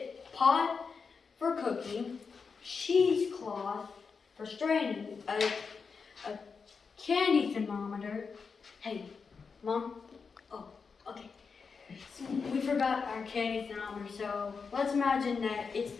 pot for cooking, cheesecloth for straining, a candy thermometer. Hey, Mom. Oh, okay. So we forgot our candy thermometer, so let's imagine that it's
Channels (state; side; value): quieter; right; 5.3 dB